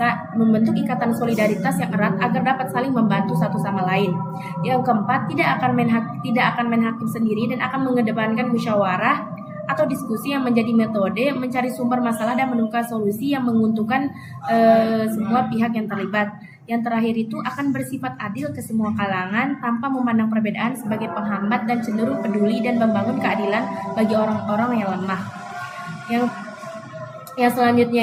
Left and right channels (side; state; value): both; identical; correlation 1.00